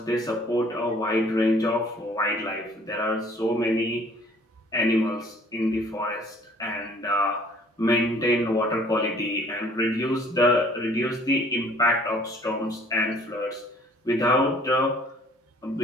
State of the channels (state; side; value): normal; both; correlation 0.56